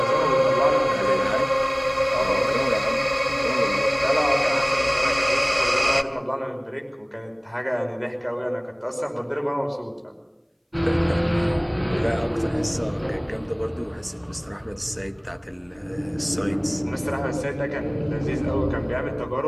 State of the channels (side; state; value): both; identical; correlation 1.00